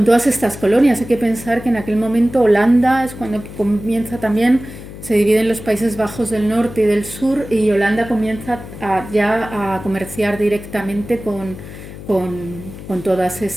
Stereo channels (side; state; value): left; noise; hum, 13 dB below the sound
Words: estas colonias. Hay que pensar que en aquel momento Holanda es cuando comienza también, se dividen los Países Bajos del norte y del sur, y Holanda comienza ya a comerciar directamente con todas